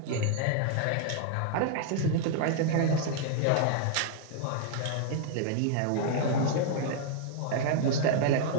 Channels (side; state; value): both; different; correlation 0.00